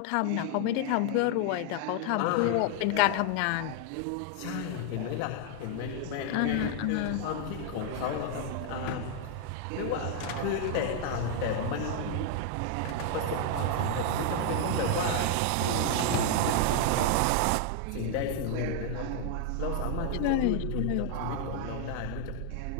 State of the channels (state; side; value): different; both; correlation 0.00